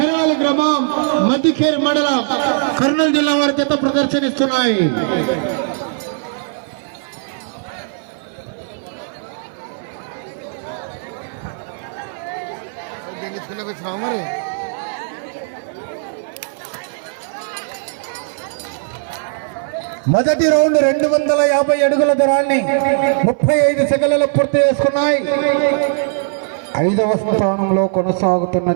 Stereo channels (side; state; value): left; silent; 58 dB below the other